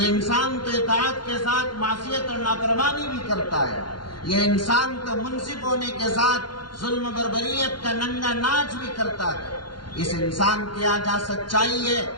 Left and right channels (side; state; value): right; late; 0.71 ms